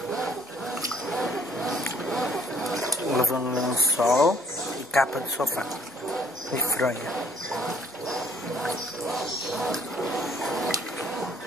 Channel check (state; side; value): normal; both; correlation 0.60